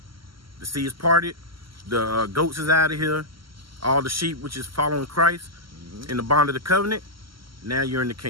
The sea is parted. The goats is out of here. All the sheep, which is following Christ in the bond of the covenant. Now you're in the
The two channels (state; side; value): late; left; 0.74 ms